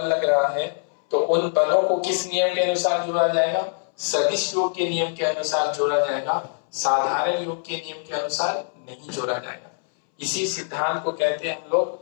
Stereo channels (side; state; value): right; silent; 63 dB below the other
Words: लग रहा है तो उन बलों को किस नियम के अनुसार जोड़ा जाएगा, सदिश योग के नियम के अनुसार जोड़ा जाएगा, साधारण योग के नियम के अनुसार नहीं जोड़ा जाएगा। इसी सिद्धांत को कहते हैं हम लोग